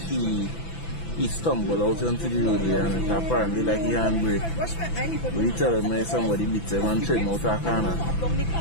he stumbled out onto the road and it apparently like he handbrake. We tell him somebody beat him and trim out a corner.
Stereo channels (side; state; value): right; late; 6.0 ms